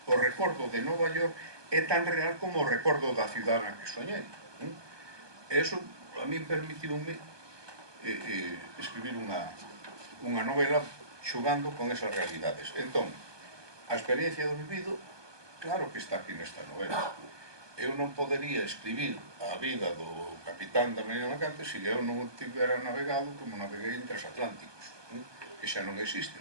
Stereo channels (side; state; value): left; late; 1.2 ms